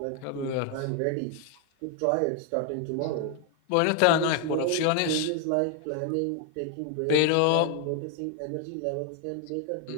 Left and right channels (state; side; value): different; both; correlation 0.00